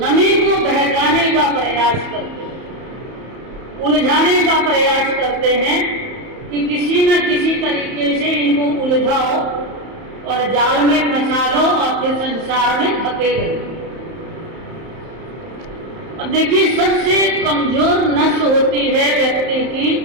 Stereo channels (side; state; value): left; late; 31 ms